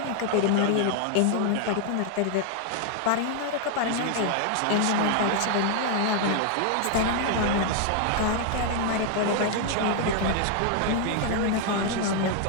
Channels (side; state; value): both; different; correlation 0.00